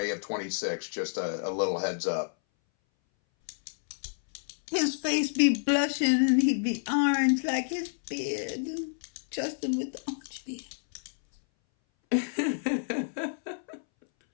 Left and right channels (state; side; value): silent; right; 58 dB below the other